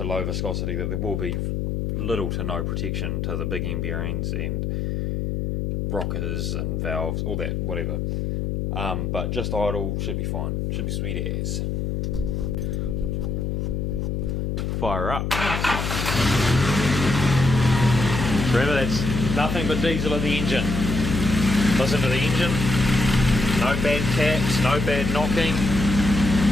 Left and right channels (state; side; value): noise; left; hum, 1 dB below the sound